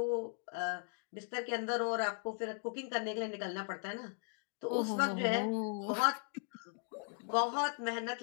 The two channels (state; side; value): silent; right; 52 dB below the other